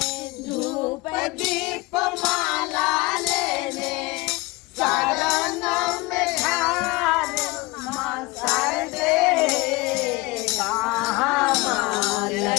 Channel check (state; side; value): quieter; right; 23.1 dB